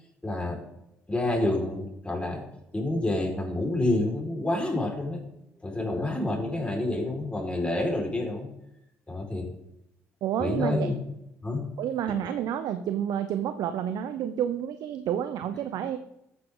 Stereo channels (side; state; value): both; normal; correlation 0.67